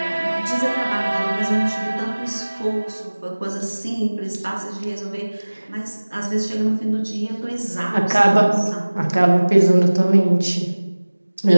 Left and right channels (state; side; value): inverted; both; correlation -1.00